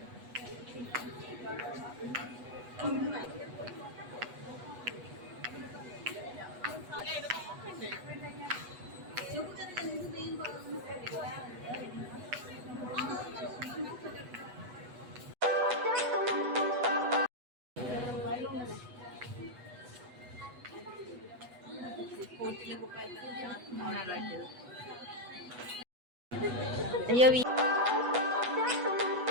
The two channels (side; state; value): left; late; 8.1 ms